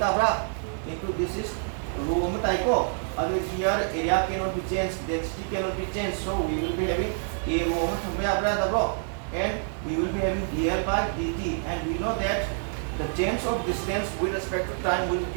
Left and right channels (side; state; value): left; silent; 60 dB below the other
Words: into this is rho taiko. Here area cannot be changed, density cannot be changed, so we will be having a rho and we will be having dl by dt, and we know that the change of distance with respect to time will